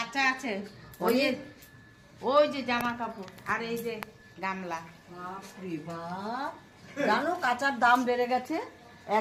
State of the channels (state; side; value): identical; both; correlation 1.00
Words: আছে, ওই যে জামা কাপড় আর এই যে গামলা। বাপরে বাপ, জানো কাঁচার দাম বেড়ে গেছে।